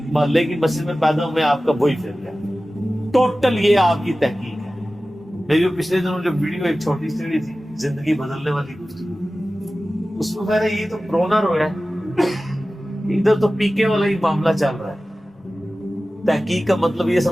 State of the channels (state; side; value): normal; both; correlation 0.96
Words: محلے کی مسجد میں پیدا ہوئے آپ کا وہی فرقہ ہے، ٹوٹل یہ آپ کی تحقیق ہے۔ میری جو پچھلے دنوں جو ویڈیو ایک چھوٹی سی تھی زندگی بدلنے والی، اس میں میں نے یہ تو رونا رویا ہے، ادھر تو پیکے والا ہی معاملہ چل رہا ہے۔ تحقیق کا مطلب یہ